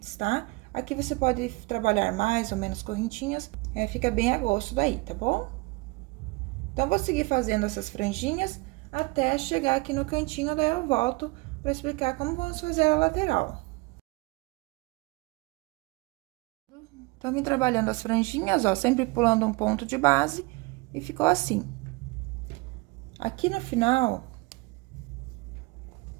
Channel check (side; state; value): left; quieter; 25.0 dB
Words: tá? Aqui você pode trabalhar mais ou menos correntinhas, fica bem a gosto daí, tá bom? Então, vou seguir fazendo essas franjinhas até chegar aqui no cantinho, daí eu volto para explicar como vamos fazer a lateral. Então, vim trabalhando as franjinhas, ó, sempre pulando um ponto de base, e ficou assim. Aqui no final,